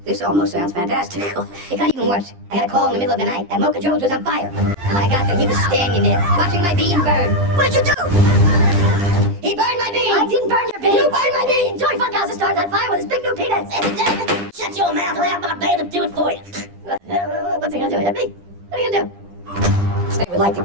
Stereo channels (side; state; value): left; late; 11 ms